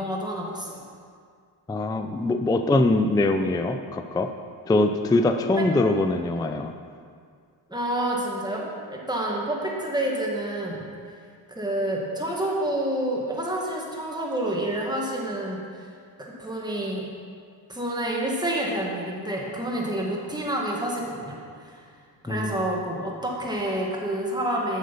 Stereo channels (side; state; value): both; normal; correlation 0.50